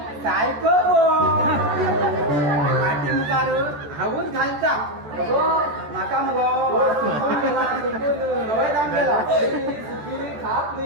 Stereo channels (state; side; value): late; left; 14 ms